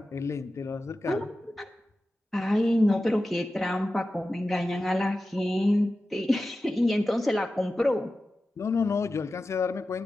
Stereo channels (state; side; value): normal; both; correlation 0.94